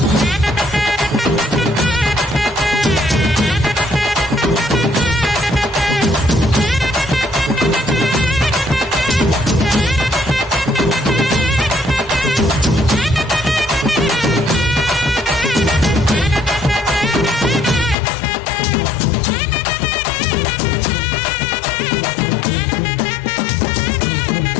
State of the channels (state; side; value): drops out; right; at 17.9 s